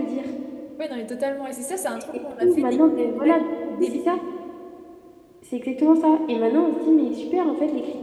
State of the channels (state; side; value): identical; both; correlation 1.00